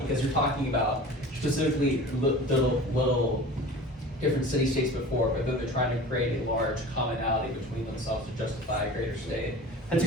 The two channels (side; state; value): both; normal; correlation 0.39